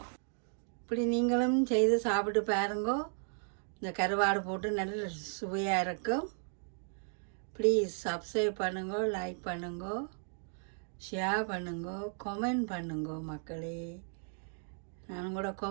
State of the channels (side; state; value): left; silent; 54 dB below the other